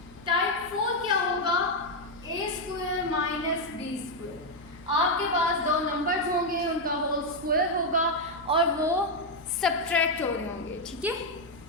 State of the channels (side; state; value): left; noise; hum, 21 dB below the sound